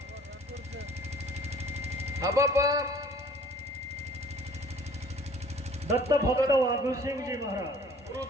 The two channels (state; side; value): normal; both; correlation 0.52